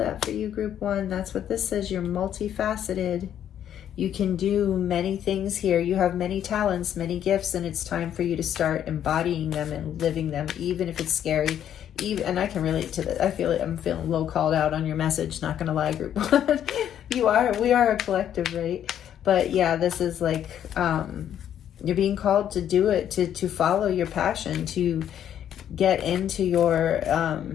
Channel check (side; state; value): right; quieter; 10.1 dB